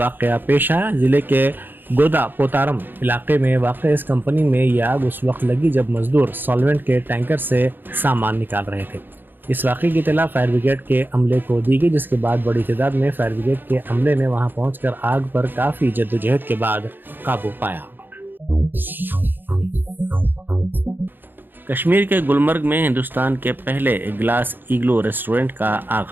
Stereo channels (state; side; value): late; left; 0.094 ms